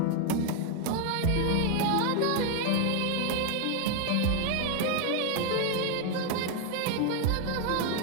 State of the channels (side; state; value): both; different; correlation 0.01